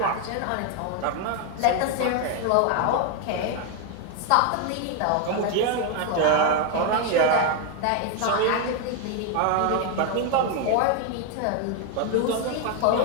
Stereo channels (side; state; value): both; different; correlation 0.01